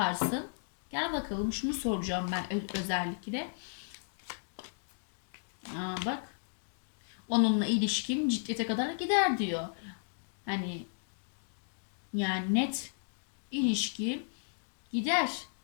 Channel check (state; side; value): silent; right; digital silence